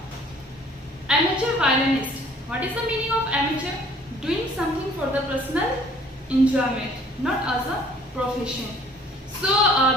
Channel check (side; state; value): both; normal; correlation 0.55